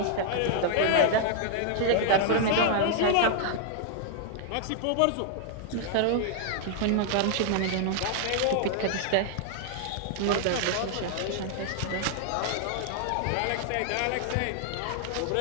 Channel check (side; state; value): both; different; correlation -0.01